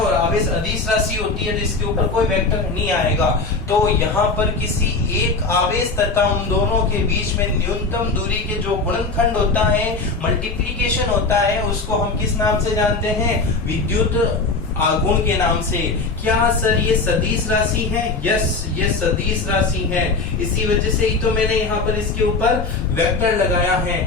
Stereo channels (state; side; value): quieter; right; 3.8 dB